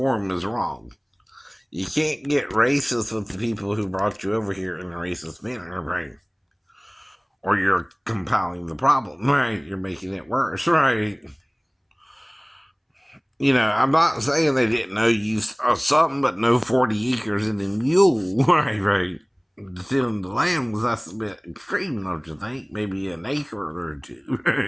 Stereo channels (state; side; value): identical; both; correlation 1.00